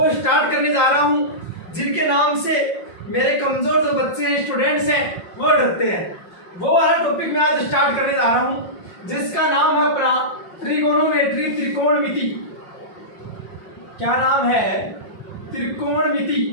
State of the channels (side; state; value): right; late; 5.5 ms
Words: स्टार्ट करने जा रहा हूं, जिनके नाम से मेरे कमजोर जो बच्चे हैं, स्टूडेंट्स हैं, वो डरते हैं। वो वाला टॉपिक मैं आज स्टार्ट करने जा रहा हूं, जिसका नाम है अपना त्रिकोणमिति। त्रिकोणमिति क्या नाम है? त्रिकोणमिति,